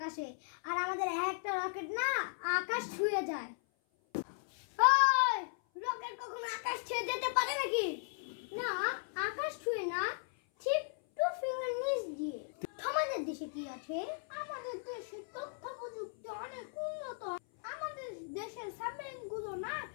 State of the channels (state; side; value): silent; right; 53 dB below the other